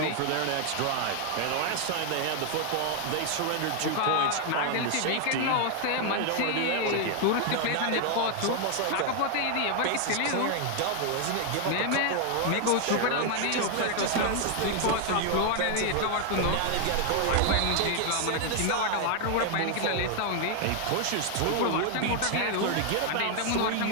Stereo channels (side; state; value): both; different; correlation 0.00